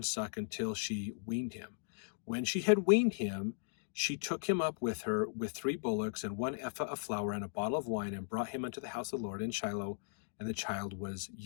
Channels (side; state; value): right; silent; digital silence